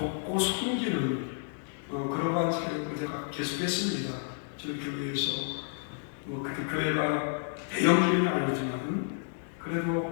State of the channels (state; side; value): silent; right; digital silence